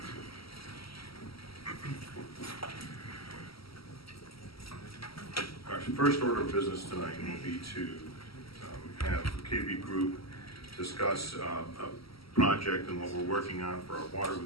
Our first order of business tonight will be to have the KB Group discuss a project and what we're working on for our water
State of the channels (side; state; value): right; late; 0.75 ms